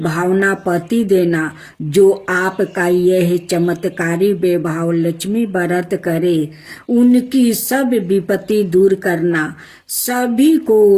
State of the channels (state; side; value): identical; both; correlation 1.00